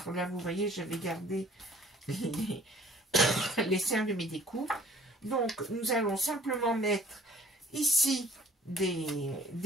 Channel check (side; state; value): both; normal; correlation 0.52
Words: là vous voyez, j'avais gardé les serres de mes découpes. Donc, nous allons simplement mettre ici